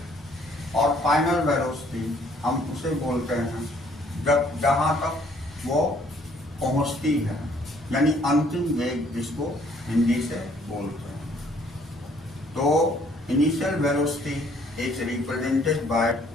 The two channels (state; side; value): normal; both; correlation 0.62